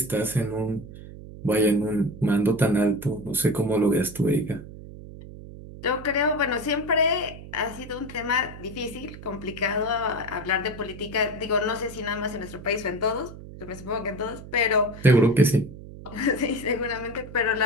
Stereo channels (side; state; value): right; noise; hum, 14 dB below the sound